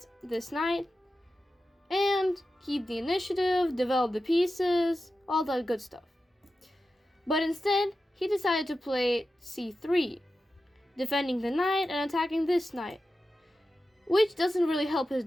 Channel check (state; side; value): normal; both; correlation 0.92